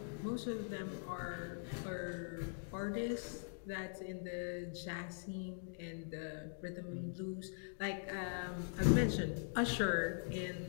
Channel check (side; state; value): right; silent; digital silence